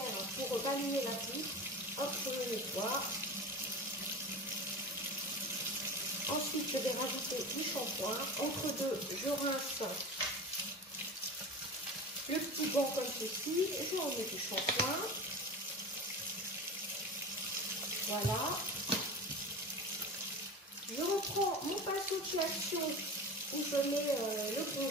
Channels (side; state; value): both; normal; correlation 0.30